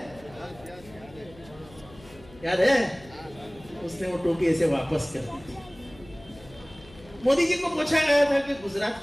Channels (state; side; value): noise; left; hum, 22 dB below the sound